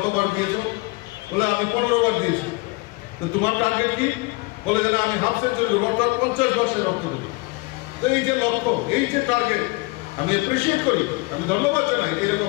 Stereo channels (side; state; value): right; quieter; 25.6 dB